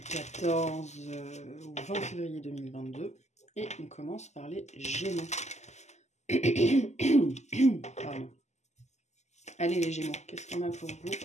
14 au 20 février 2022. Et on commence par les Gémeaux. Pardon. Allez les Gémeaux, qu'est-ce qu'on a pour vous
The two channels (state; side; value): late; right; 0.33 ms